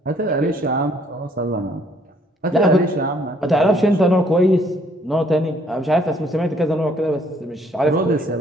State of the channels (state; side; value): normal; both; correlation 0.64